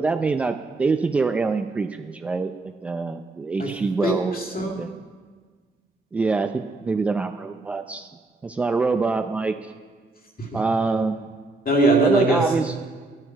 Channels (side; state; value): left; quieter; 3.1 dB